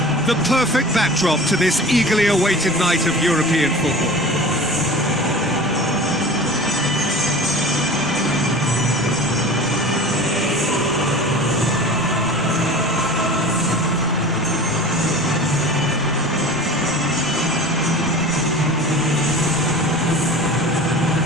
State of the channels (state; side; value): normal; both; correlation 0.37